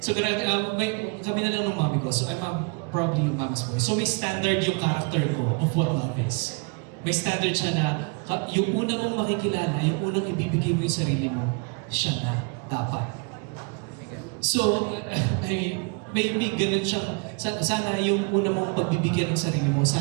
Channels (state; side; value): quieter; left; 34.4 dB